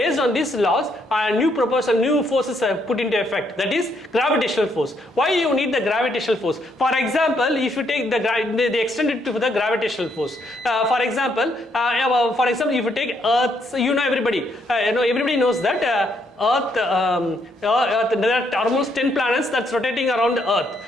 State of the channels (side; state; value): both; normal; correlation 0.73